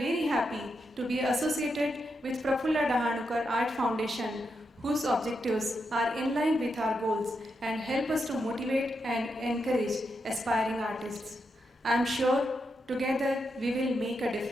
happy to be associated with Prafulla Dahanukar Art Foundation, whose objectives are in line with our goals and help us to motivate and encourage aspiring artists. I am sure together we will make a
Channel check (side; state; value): both; normal; correlation 0.84